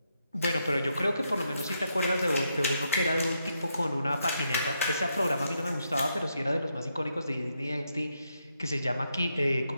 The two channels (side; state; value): both; inverted; correlation -0.81